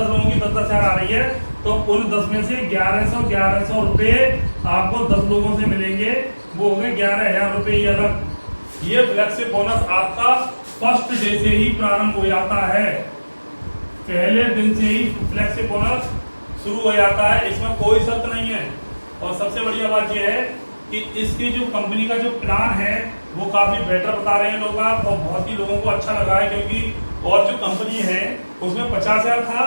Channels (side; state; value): both; inverted; correlation -1.00